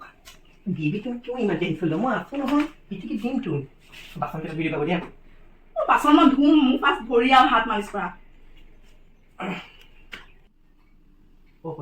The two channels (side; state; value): both; identical; correlation 1.00